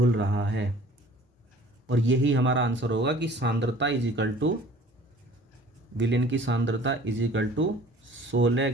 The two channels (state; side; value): normal; both; correlation 0.49